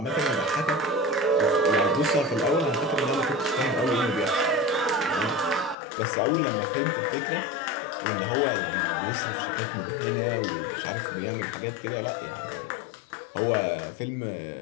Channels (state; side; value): drops out; right; at 5.8 s